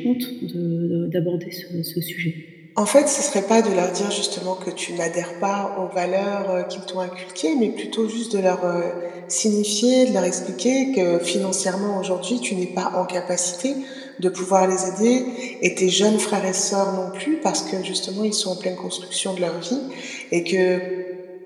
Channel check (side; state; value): both; identical; correlation 1.00